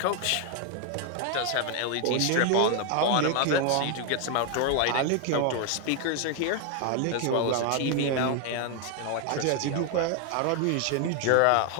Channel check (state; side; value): different; both; correlation 0.01